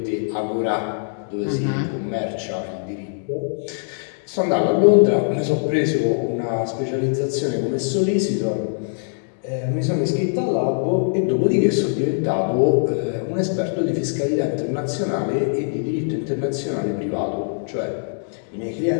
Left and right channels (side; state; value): right; silent; digital silence